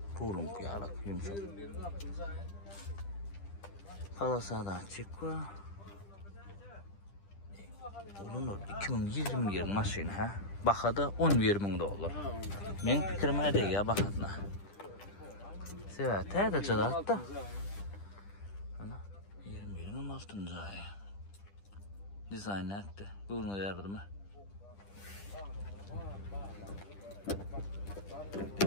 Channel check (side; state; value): right; late; 10 ms